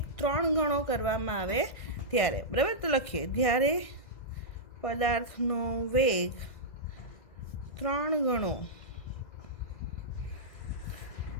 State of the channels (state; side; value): late; right; 2.0 ms